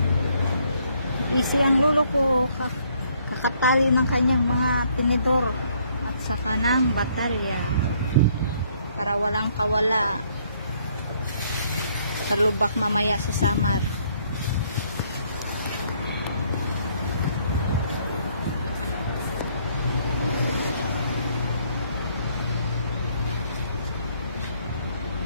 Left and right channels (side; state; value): both; inverted; correlation -0.67